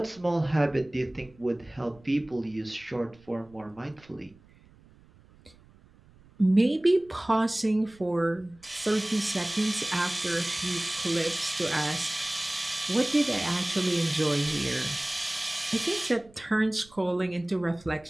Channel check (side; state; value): right; noise; rumble, 27 dB below the sound